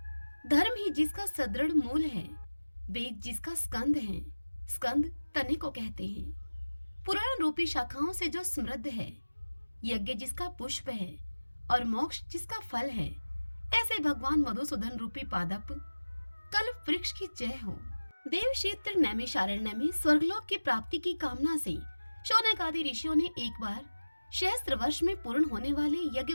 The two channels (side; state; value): both; inverted; correlation -1.00